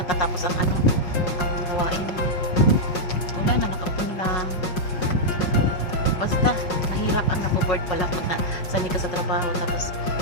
ang ang gawain. Wala na, nakaupo lang. Basta, mahirap ang napo-board pala pag sanay ka sa trabaho, tapos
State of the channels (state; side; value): late; right; 5.5 ms